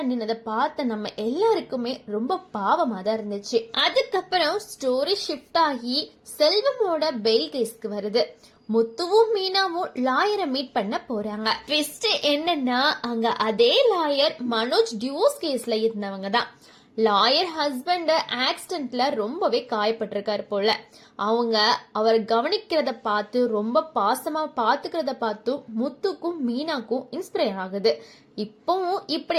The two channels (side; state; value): both; identical; correlation 1.00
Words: நின்னதை பார்த்த நம்ம எல்லாருக்குமே ரொம்ப பாவமா தான் இருந்துச்சு. அதுக்கப்புறம் ஸ்டோரி ஷிஃப்ட் ஆகி செல்வமோட பெயில் கேஸ்க்கு வருது. முத்துவும் மீனாவும் லாயரை மீட் பண்ண போறாங்க. ட்விஸ்ட் என்னன்னா அங்க அதே லாயர் மனோஜ் டிவோர்ஸ் கேஸ்ல இருந்தவங்க தான். லாயர் ஹஸ்பண்ட் ஆக்சிடென்ட்ல ரொம்பவே காயப்பட்டிருக்காரு போல. அவங்க அவர் கவனிக்கிறத பார்த்து ரொம்ப பாசமா பாத்துக்கிறத பார்த்து முத்துக்கும் மீனாக்கும் இன்ஸ்பயர் ஆகுது. இப்பவும்